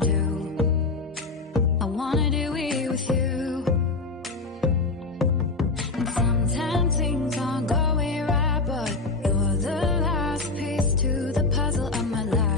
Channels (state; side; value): quieter; right; 3.7 dB